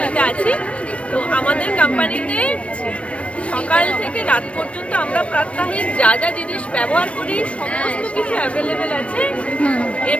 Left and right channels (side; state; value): right; late; 0.062 ms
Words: আছি। তো আমাদের কোম্পানিতে সকাল থেকে রাত পর্যন্ত আমরা প্রাত্যহিক যা যা জিনিস ব্যবহার করি সমস্ত কিছু অ্যাভেলেবেল আছে